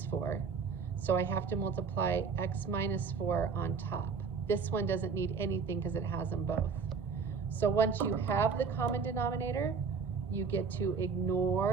4. So I have to multiply x minus 4 on top. This one doesn't need anything because it has them both. So once you have the common denominator, you get to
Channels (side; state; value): left; quieter; 5.5 dB